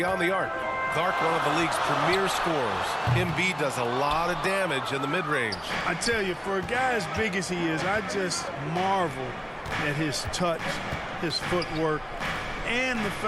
the arc. Clark, one of the league's premier scorers. Embiid does a lot of damage in the mid-range. I tell you, for a guy as big as he is, I just marvel at his touch, his footwork, and the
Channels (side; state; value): both; identical; correlation 1.00